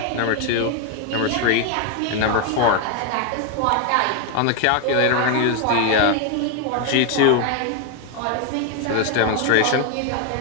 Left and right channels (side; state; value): both; different; correlation 0.01